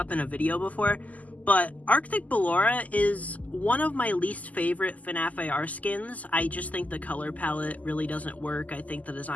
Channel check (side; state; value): right; late; 0.076 ms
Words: in a video before, but Arctic Ballora is one of my least favorite FNAF AR skins. I just think the color palette really doesn't work. I think the